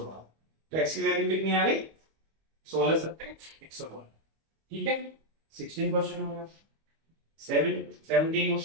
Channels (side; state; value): left; late; 25 ms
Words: तो x की वैल्यू कितनी आ गई 16 7 112। ठीक है, 16 क्वेश्चन हो गया। 17